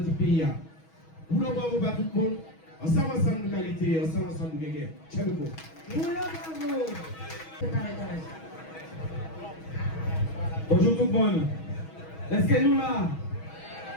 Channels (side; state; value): right; late; 6.2 ms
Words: pays. Nous le bravo à tout le monde. Ensemble de qualité, ensemble de guerre. Ciao, Bonjour tout le monde. Est-ce que nous là?